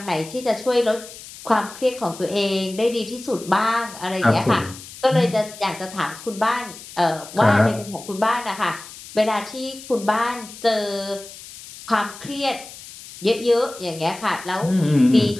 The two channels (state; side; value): noise; left; hiss, 16 dB below the sound